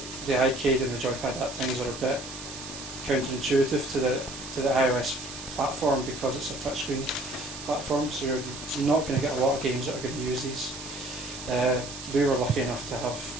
the iCade and the joypad app things are a bit counterintuitive to the iOS platform because it's a touchscreen platform, so you're not going to get a lot of games that are going to use these. We were lucky enough to have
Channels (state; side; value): noise; right; hiss, 11 dB below the sound